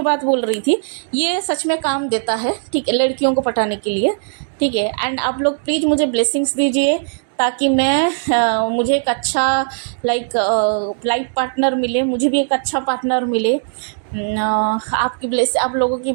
बात बोल रही थी, ये सच में काम देता है, ठीक है, लड़कियों को पटाने के लिए, ठीक है। एंड आप लोग प्लीज़ मुझे ब्लेसिंग्स दीजिए ताकि मुझे एक अच्छा लाइफ पार्टनर मिले, मुझे भी एक अच्छा पार्टनर मिले। आप लोगों की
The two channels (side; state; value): left; silent; digital silence